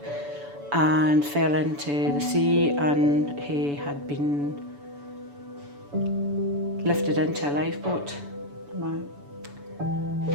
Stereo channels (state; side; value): late; left; 7.0 ms